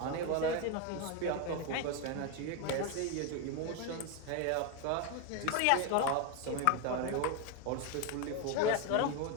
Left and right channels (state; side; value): different; both; correlation 0.02